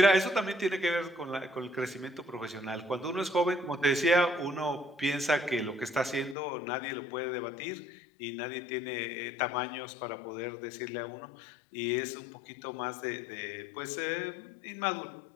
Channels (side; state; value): right; drops out; at 6.4 s